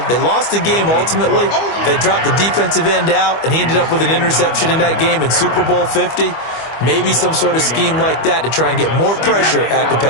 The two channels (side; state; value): right; late; 25 ms